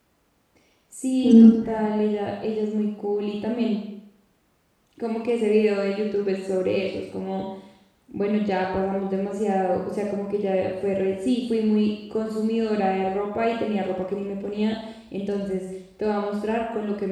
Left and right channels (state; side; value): identical; both; correlation 1.00